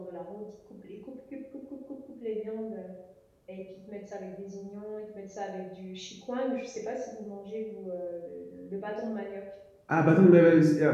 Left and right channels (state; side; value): identical; both; correlation 1.00